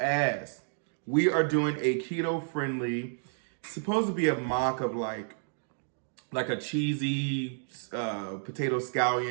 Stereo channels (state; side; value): silent; left; digital silence